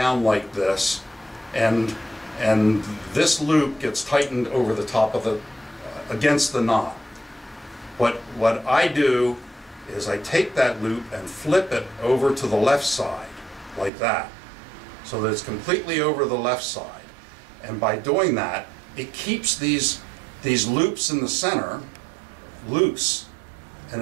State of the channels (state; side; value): drops out; left; at 13.9 s